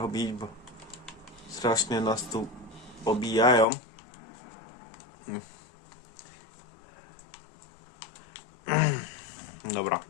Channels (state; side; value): drops out; right; at 3.7 s